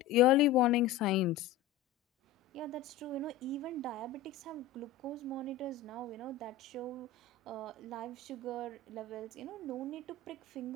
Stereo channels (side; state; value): right; quieter; 8.1 dB